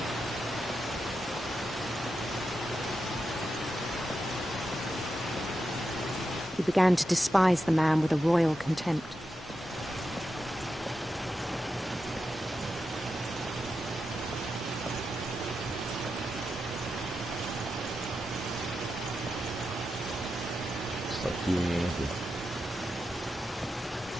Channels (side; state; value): both; normal; correlation 0.88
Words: He began to despise the man with a royal contempt. It's like doing anything.